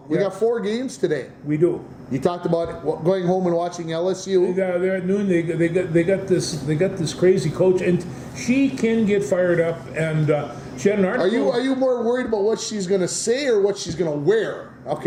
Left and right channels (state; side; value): identical; both; correlation 1.00